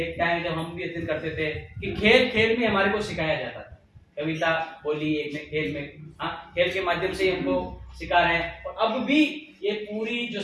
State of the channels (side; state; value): both; identical; correlation 1.00